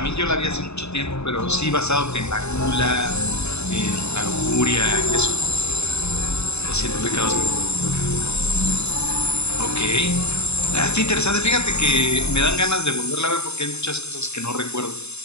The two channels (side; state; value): right; late; 0.80 ms